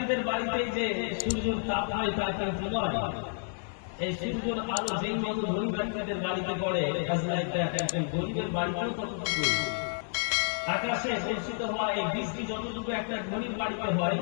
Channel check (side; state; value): right; silent; digital silence